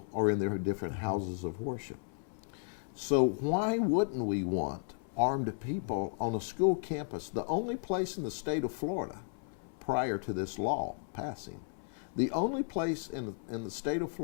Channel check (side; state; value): right; silent; 55 dB below the other